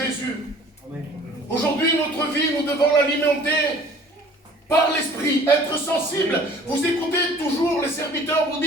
Aujourd'hui, notre vie, nous devons l'alimenter par l'Esprit, être sensible. Vous écoutez toujours les serviteurs, vous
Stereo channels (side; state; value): both; normal; correlation 0.50